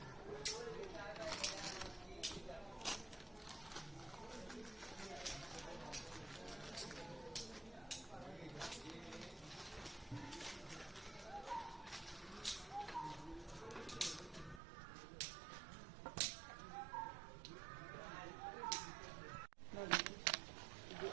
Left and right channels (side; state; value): left; drops out; at 14.6 s